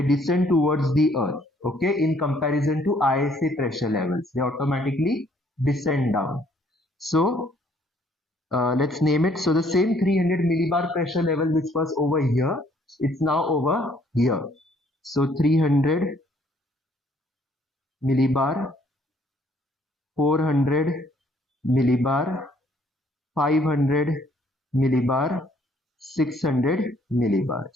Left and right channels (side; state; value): both; normal; correlation 0.64